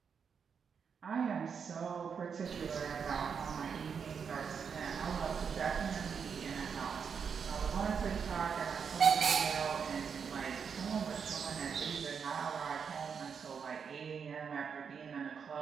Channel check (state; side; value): quieter; left; 6.5 dB